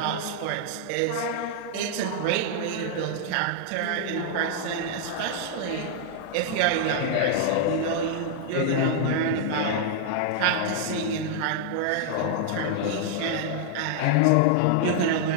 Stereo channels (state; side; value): different; both; correlation -0.01